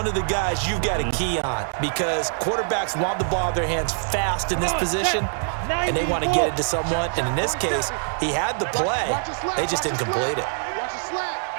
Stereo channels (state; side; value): silent; left; digital silence